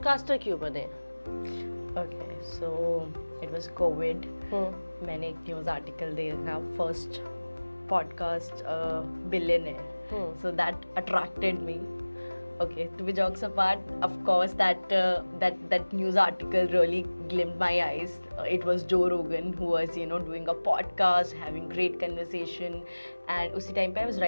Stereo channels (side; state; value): both; inverted; correlation -1.00